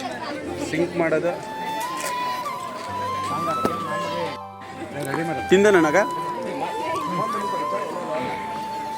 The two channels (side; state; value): both; identical; correlation 1.00